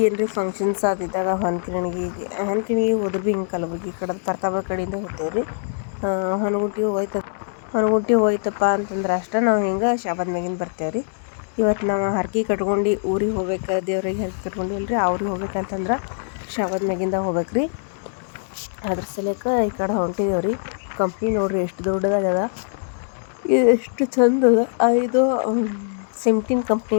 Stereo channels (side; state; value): right; silent; digital silence